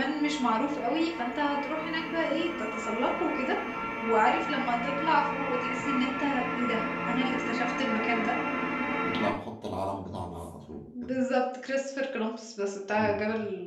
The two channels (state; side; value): identical; both; correlation 1.00